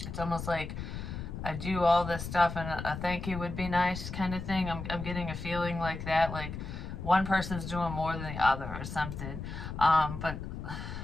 It's almost like I do all this stuff and a thank you would be nice kind of thing. I'm getting a feeling like that, like one person's doing more than the other or something. But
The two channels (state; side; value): noise; left; rumble, 7 dB below the sound